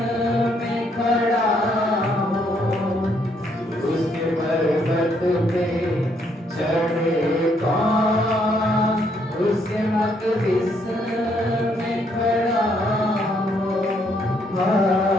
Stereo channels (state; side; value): normal; both; correlation 0.71